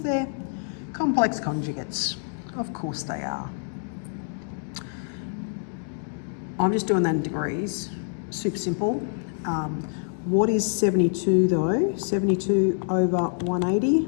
they're complex conjugates. Of course they are. I'm just doing that in degrees. Super simple. What is 72 though? 72 over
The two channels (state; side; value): silent; right; digital silence